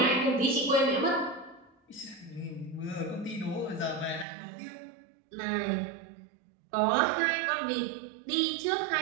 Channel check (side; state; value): left; drops out; at 4.2 s